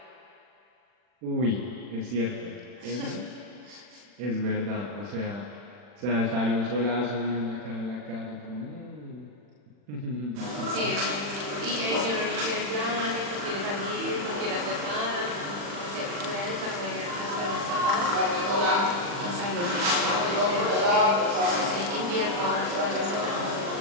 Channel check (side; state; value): left; late; 40 ms